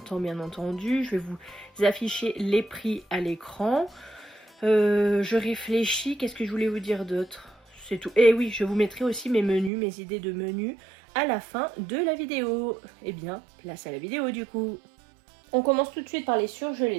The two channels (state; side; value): drops out; left; at 9.7 s